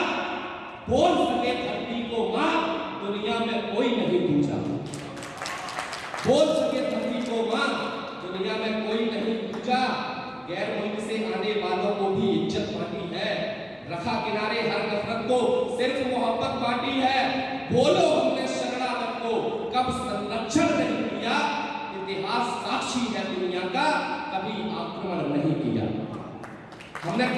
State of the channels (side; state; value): both; identical; correlation 1.00